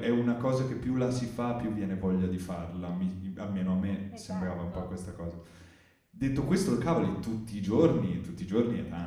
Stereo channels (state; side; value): identical; both; correlation 1.00